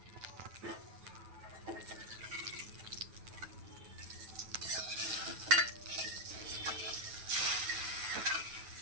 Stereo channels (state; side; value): late; left; 9.2 ms